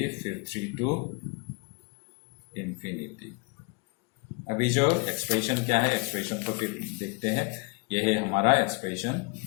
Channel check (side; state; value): right; quieter; 30.0 dB